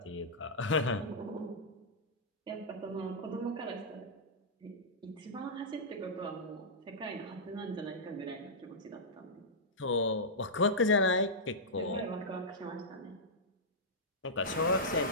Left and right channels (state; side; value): normal; both; correlation -0.12